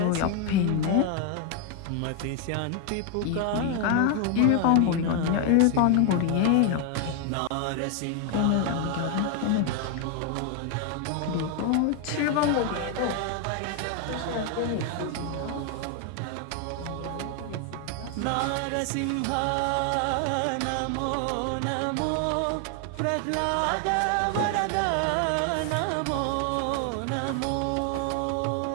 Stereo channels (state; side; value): different; both; correlation 0.01